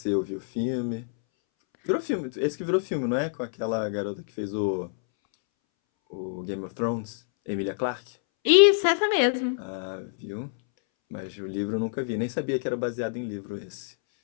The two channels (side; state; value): right; silent; 60 dB below the other